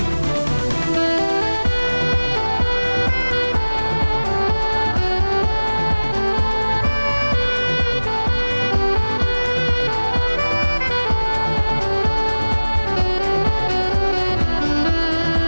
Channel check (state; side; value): inverted; both; correlation -1.00